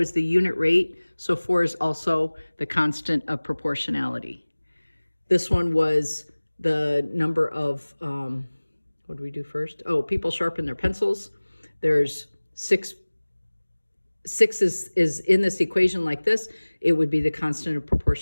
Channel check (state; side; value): inverted; both; correlation -1.00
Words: the unit rate, so 4 is also the constant of proportionality. This one was the number of, what do we do first? Oh, people sharpen their pencils. There's 6 is in this equation like this. It would be the constant of